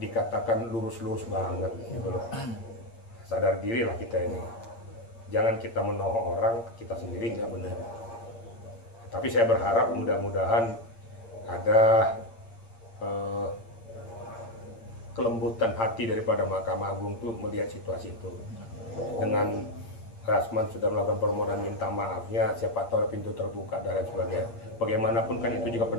lurus-lurus banget gitu loh. Sadar dirilah kita ini. Jangan kita menohok orang, kita sendiri nggak benar. Tapi saya berharap mudah-mudahan ada kelembutan hati daripada Mahkamah Agung itu melihat situasi itu. Dengan Rasman sudah melakukan permohonan minta maafnya, siapa tahu pintu terbuka dan lain sebagainya. Bagaimanapun kan itu juga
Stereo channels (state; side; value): late; right; 8.7 ms